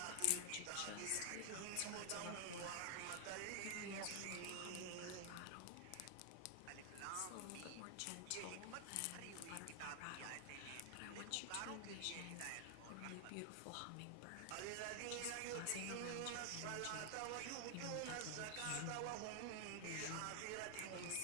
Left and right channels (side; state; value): both; different; correlation 0.00